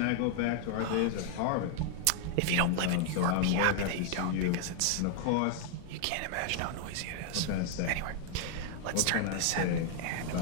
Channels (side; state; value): both; different; correlation 0.00